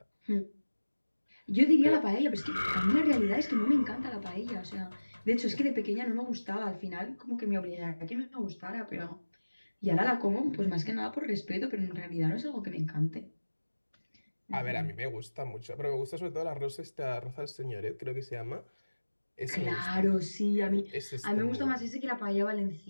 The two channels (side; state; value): both; inverted; correlation -1.00